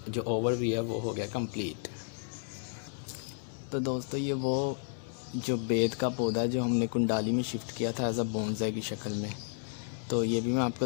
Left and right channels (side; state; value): right; silent; digital silence